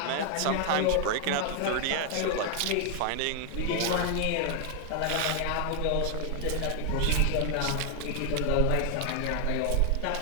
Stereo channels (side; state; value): both; different; correlation 0.00